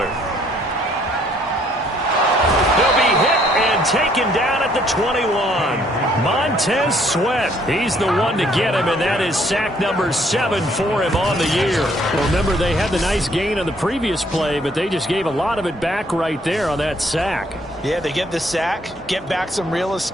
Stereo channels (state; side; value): normal; both; correlation 0.65